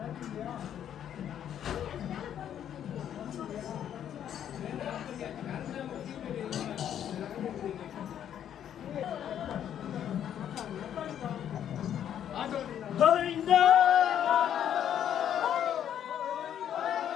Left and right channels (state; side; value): quieter; right; 9.8 dB